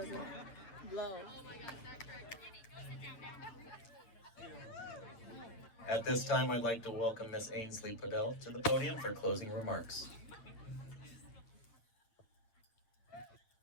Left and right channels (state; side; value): late; right; 9.2 ms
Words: blow. At this time, I'd like to welcome Miss Ainsley Podell to the podium for closing remarks.